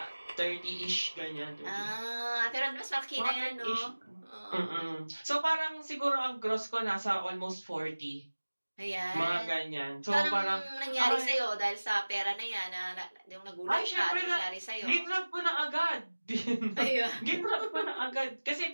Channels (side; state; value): both; inverted; correlation -1.00